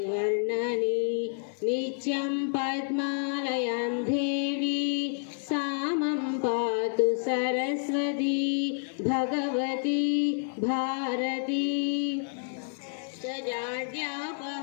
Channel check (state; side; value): silent; right; digital silence